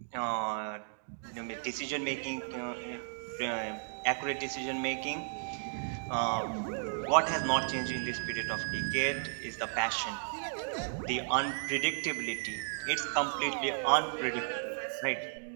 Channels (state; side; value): silent; left; digital silence